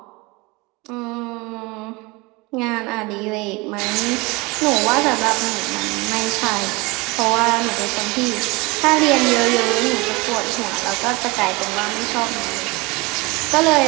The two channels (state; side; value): quieter; left; 25.1 dB